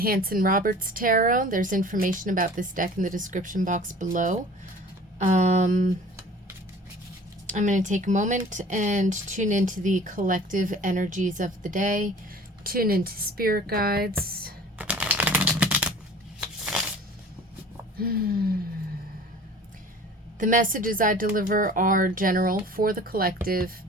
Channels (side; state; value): both; normal; correlation 0.45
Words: Tarot. There's information about this deck in the description box below. I'm going to take a moment and tune into the collective energies of the day. Tune into spirit guides. The messages I deliver are general for the collective